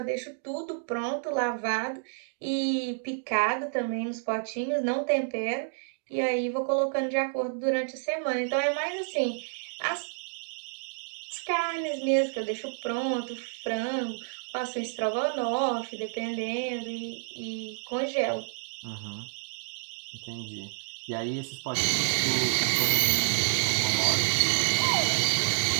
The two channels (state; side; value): silent; left; digital silence